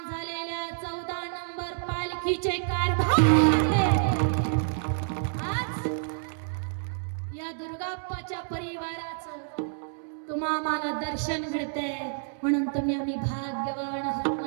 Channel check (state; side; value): silent; left; 59 dB below the other